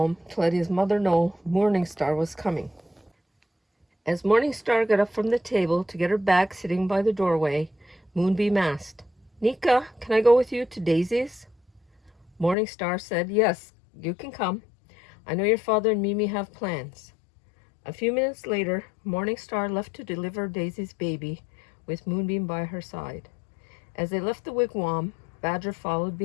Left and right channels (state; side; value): drops out; right; at 12.6 s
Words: to let his mother know Morning Star was coming. As Morning Star got up from the table to get her bag sitting by the doorway, Moonbeam asked, "Nika, can I go with you to Daisy's?" Morning Star said, "Yes, you can come. I know your father and Mimi have plans." A few minutes later, Morning Star left to deliver Daisy's baby, with Moonbeam by her side. As they left the wigwam, Badger followed